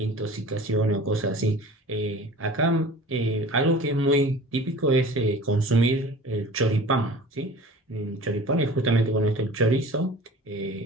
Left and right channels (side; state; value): both; normal; correlation 0.41